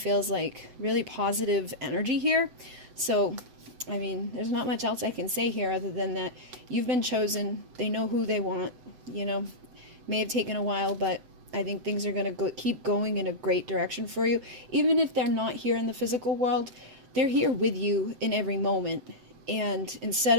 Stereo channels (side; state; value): left; late; 7.9 ms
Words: like really positive energy here. So, I mean, there's not much else I can say here other than that you've been chosen. They know who they want. May have taken a while, but I think things are going to keep going in a great direction for you. Even if they're not here in the physical world, they're here with you in every moment. And instead